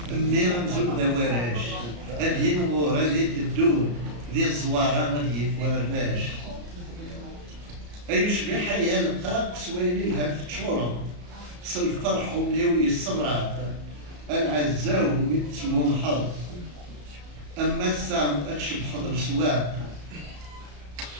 ميرا نزول دواراش هادي نغور هادي تدو ذي الزوارة غادي يفواراش أيشبه حيا لقاك سويني لها في تشورة سالفرح ومليوي الصبرات العزاو ميتسمو الحظ أما السام أتشب حضر سواق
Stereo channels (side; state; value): left; late; 34 ms